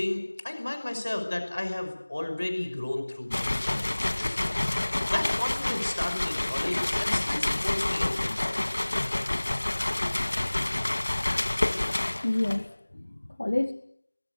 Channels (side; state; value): both; inverted; correlation -1.00